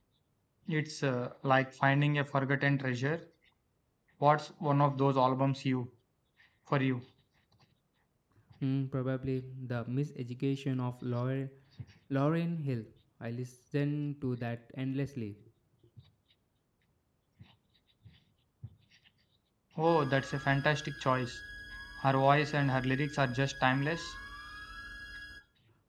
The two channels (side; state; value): both; identical; correlation 1.00